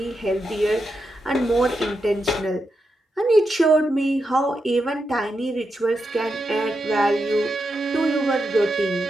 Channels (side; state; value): both; normal; correlation 0.86